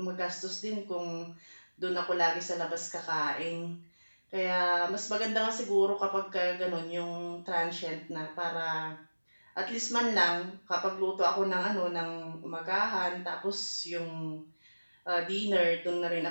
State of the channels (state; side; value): inverted; both; correlation -1.00